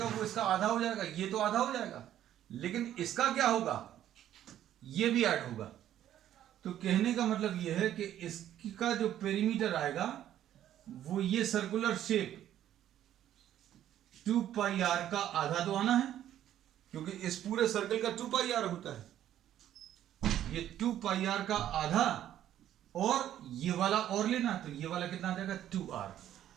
वो इसका आधा हो जाएगा, ये तो आधा हो जाएगा, लेकिन इसका क्या होगा, ये भी ऐड होगा। तो कहने का मतलब ये है कि इसका जो पेरीमीटर आएगा वो ये सर्कुलर शेप 2 पाई आर का आधा तो आना है, क्योंकि इस पूरे सर्कल का 2 पाई आर होता है। ये 2 पाई आर का आधा और ये वाला और लेना, तो ये वाला कितना आ जाएगा 2R।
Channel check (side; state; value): left; quieter; 11.6 dB